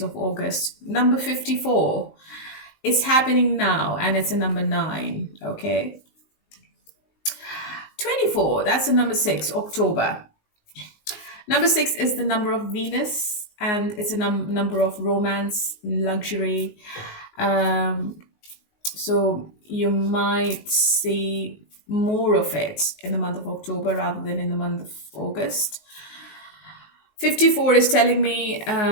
of August. Number 54 is happening now, and it's a number 9. Okay. 24, that's the number 6, October. Number 6 is the number of Venus, and it's a number of romance, luxury. So you might see more of it in the month of October rather than in the month of August. 54 is telling me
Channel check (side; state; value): right; late; 19 ms